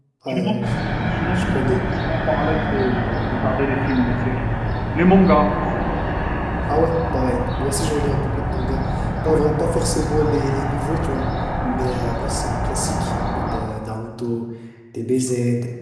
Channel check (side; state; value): both; identical; correlation 1.00